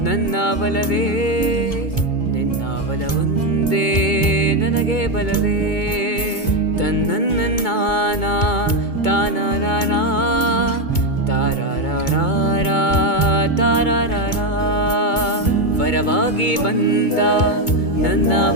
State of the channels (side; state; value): right; late; 2.2 ms